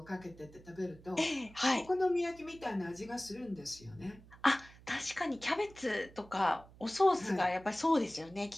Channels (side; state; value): right; noise; hum, 22 dB below the sound